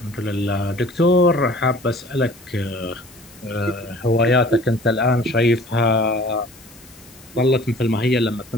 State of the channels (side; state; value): left; noise; hiss, 24 dB below the sound